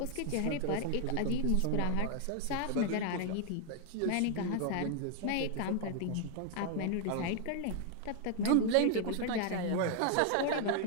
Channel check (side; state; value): both; different; correlation 0.00